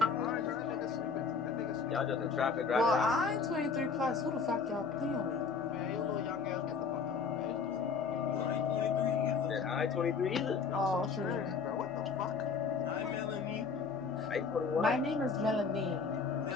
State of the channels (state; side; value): quieter; right; 5.2 dB